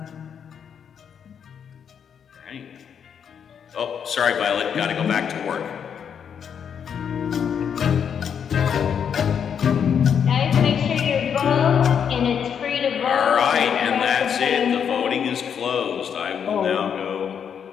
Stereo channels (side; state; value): right; quieter; 7.7 dB